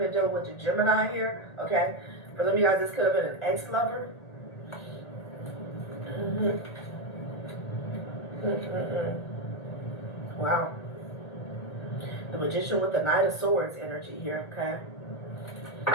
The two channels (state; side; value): late; right; 1.8 ms